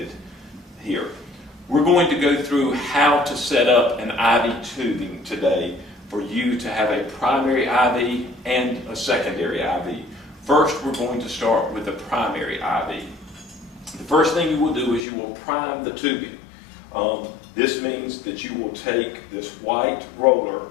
here. We're going to go through how to set up an IV tubing today for you to have a primary IV and a secondary IV. First, we're going to start with the primary IV. The first thing you will do is you will prime the tubing. This means that you will take this white roller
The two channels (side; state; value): right; drops out; at 15.0 s